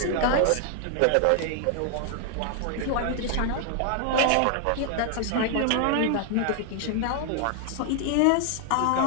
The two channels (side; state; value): both; different; correlation 0.00